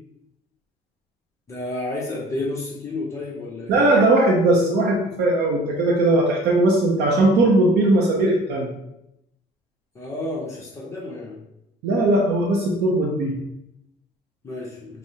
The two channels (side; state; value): both; normal; correlation 0.47